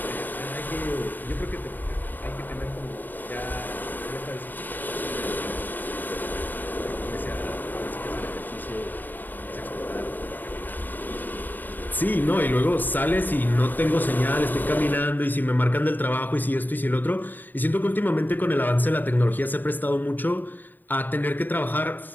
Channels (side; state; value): right; late; 0.089 ms